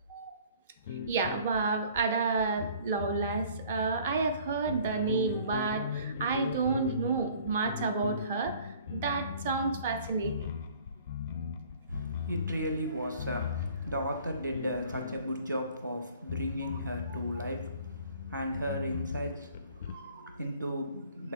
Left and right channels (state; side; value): inverted; both; correlation -0.53